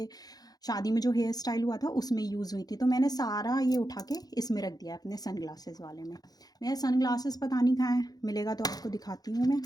शादी में जो हेयर स्टाइल हुआ था उसमें यूज़ हुई थी। तो मैंने सारा ये उठा के इसमें रख दिया अपने सन ग्लासेस वाले में। मेरे सन ग्लासेस पता नहीं कहाँ है, मिलेगा तो आपको दिखाती हूँ मैं,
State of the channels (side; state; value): right; late; 0.19 ms